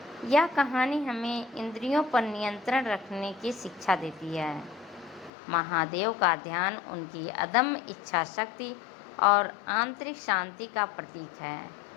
यह कहानी हमें इंद्रियों पर नियंत्रण रखने की शिक्षा देती है। महादेव का ध्यान उनकी अदम्य इच्छा शक्ति और आंतरिक शांति का प्रतीक है।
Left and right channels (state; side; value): drops out; right; at 5.3 s